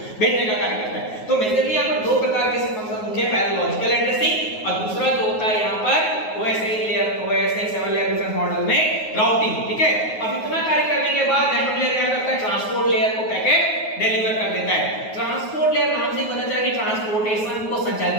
भेजने का कार्य करता है। तो मेजरली यहाँ पर दो प्रकार के फंक्शन मुख्य है, पहला लॉजिकल एड्रेसिंग और दूसरा जो होता है यहाँ पर OSI layer, OSI 7 layer difference model में राउटिंग, ठीक है। अब इतना कार्य करने के बाद नेटवर्क लेयर क्या करता है, ट्रांसपोर्ट लेयर को पैकेट डिलीवर कर देता है। ट्रांसपोर्ट लेयर नाम से पता चला कि ट्रांसपोर्टेशन को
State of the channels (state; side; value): late; right; 9.4 ms